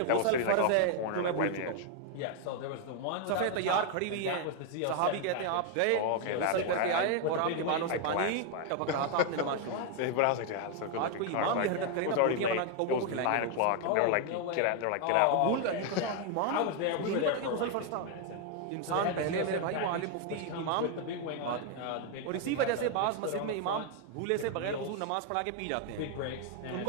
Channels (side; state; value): both; different; correlation 0.01